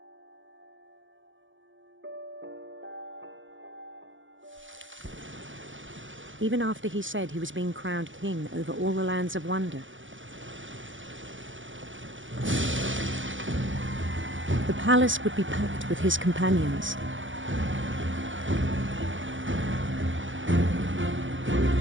Even after he said he was being crowned king over all the lands of wonder. The palace would be packed with his companions.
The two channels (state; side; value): late; left; 0.56 ms